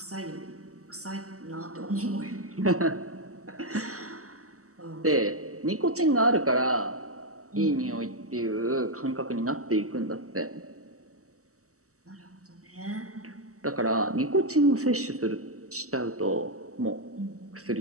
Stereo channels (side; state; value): left; late; 0.65 ms